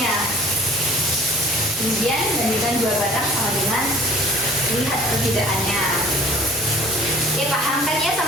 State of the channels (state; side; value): normal; both; correlation 0.50